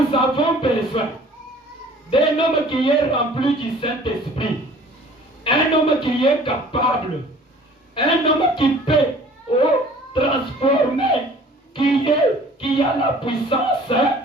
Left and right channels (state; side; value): normal; both; correlation 0.50